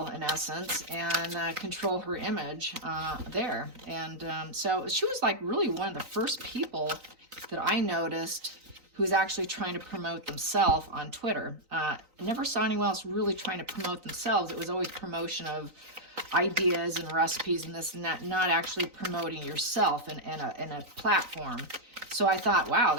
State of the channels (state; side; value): late; left; 3.9 ms